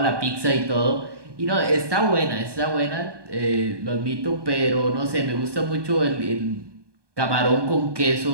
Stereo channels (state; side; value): late; left; 1.2 ms